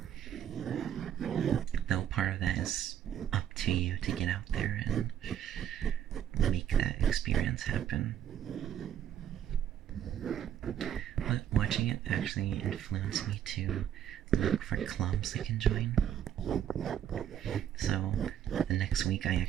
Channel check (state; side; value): quieter; left; 10.0 dB